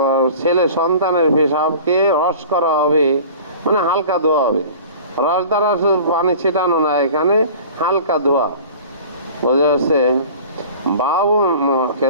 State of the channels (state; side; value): inverted; both; correlation -0.42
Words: ছেলে সন্তানের পেশাবকে রস করা হবে, মানে হালকা ধোয়া হবে। রস দ্বারা পানি ছিটানো না, এখানে হালকা ধোয়া, বোঝা যাচ্ছে।